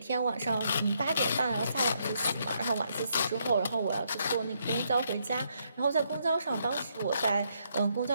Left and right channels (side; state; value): both; inverted; correlation -0.75